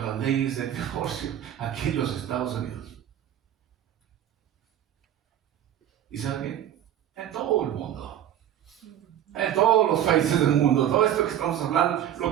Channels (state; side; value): quieter; left; 10.9 dB